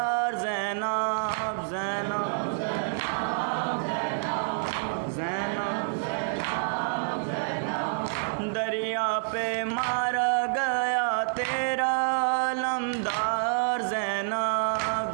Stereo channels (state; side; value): silent; left; digital silence